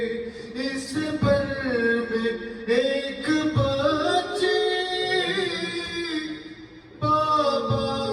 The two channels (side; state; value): both; identical; correlation 1.00